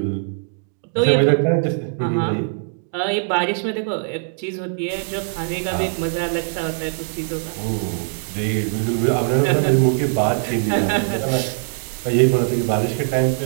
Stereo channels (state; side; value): silent; left; 65 dB below the other